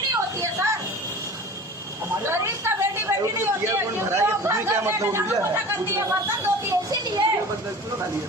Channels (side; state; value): both; normal; correlation 0.38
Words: होती है सर। गरीब का बेटी बेटी नहीं होती है। करती है, बर्तन धोती है, इसीलिए